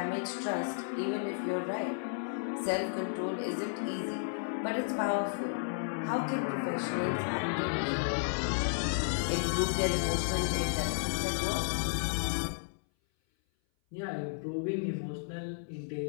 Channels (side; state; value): right; silent; 56 dB below the other